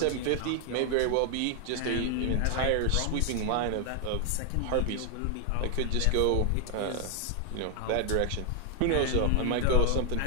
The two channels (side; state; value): both; different; correlation 0.00